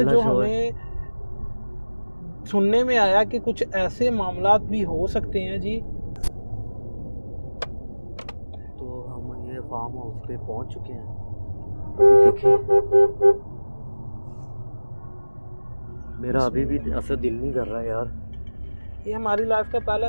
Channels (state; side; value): inverted; both; correlation -1.00